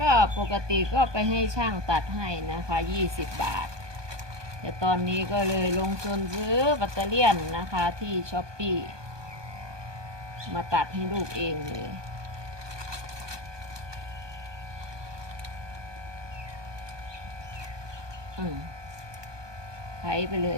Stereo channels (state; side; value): late; left; 1.2 ms